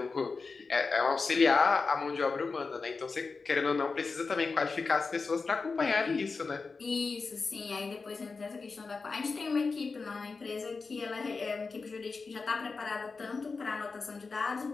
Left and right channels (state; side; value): quieter; right; 4.4 dB